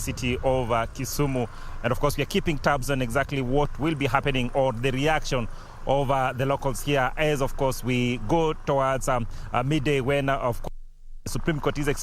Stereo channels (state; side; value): identical; both; correlation 1.00